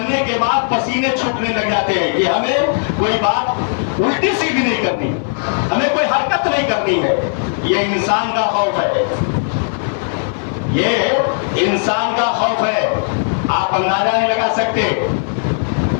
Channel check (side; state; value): right; silent; 61 dB below the other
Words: کے بعد پسینے چھوٹنے لگ جاتے ہیں کہ ہمیں کوئی بات الٹی سیدھی نہیں کرنی، ہمیں کوئی حرکت نہیں کرنی ہے۔ یہ انسان کا خوف ہے، یہ انسان کا خوف ہے۔ آپ اندازہ نہیں لگا سکتے،